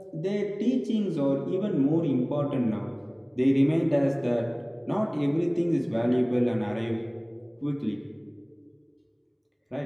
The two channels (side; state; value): both; identical; correlation 1.00